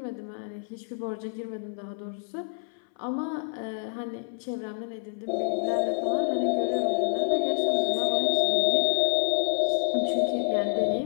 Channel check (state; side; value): silent; right; 60 dB below the other